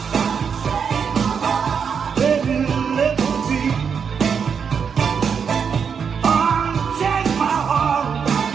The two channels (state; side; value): quieter; left; 6.6 dB